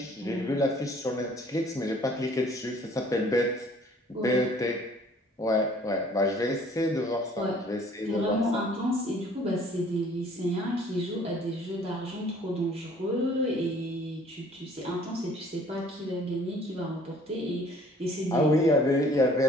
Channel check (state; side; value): normal; both; correlation 0.55